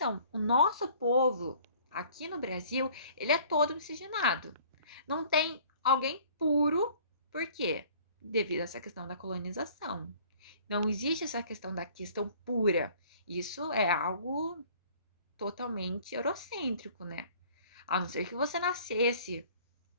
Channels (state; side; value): inverted; both; correlation -0.53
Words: O nosso povo, aqui no Brasil, ele é todo miscigenado. Não tem alguém puro, por quê? Devido a essa questão da colonização. Não existe essa questão da questão pura. Isso é algo totalmente eurocêntrico, né? A não ser que você nascesse